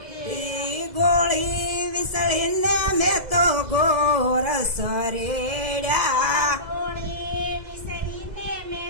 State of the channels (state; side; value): late; left; 2.0 ms